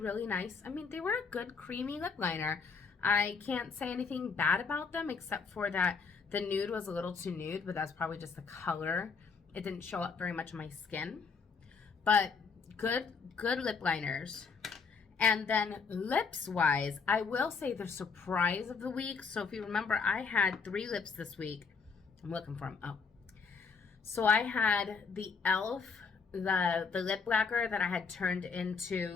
nice. I mean, they were a good creamy lip liner. I can't say anything bad about them except for that the nude was a little too nude, but that's probably just the color. It didn't show up very much on my skin. But good lip liners. And then lips wise, I will say the surprise of the week. So if you remember, I had 3 lips this week. I'm looking for them. Oh. So I had the e.l.f. the lip lacquer that I had turned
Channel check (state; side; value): quieter; right; 5.3 dB